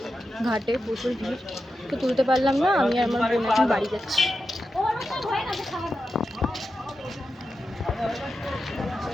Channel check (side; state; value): both; normal; correlation 0.90